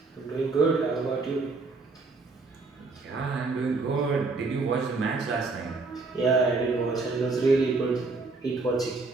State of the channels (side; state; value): left; quieter; 3.9 dB